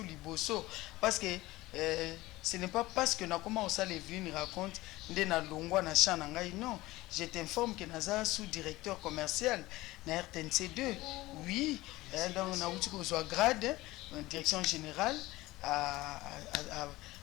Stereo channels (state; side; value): quieter; right; 18.8 dB